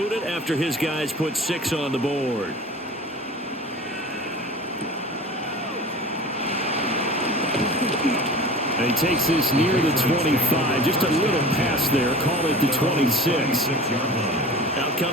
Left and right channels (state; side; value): normal; both; correlation 0.39